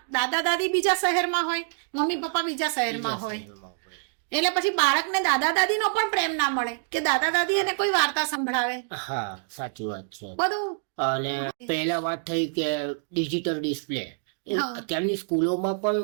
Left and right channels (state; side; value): silent; left; digital silence